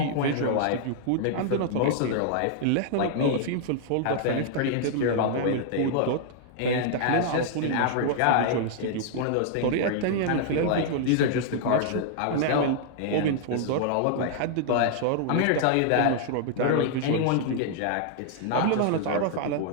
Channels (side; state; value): both; different; correlation -0.01